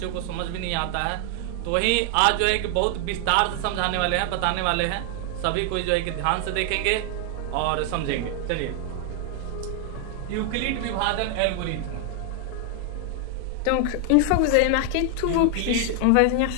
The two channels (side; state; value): both; different; correlation 0.00